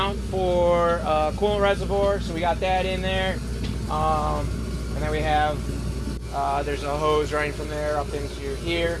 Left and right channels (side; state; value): both; identical; correlation 1.00